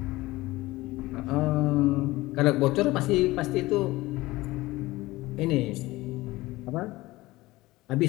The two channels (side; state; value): right; quieter; 19.3 dB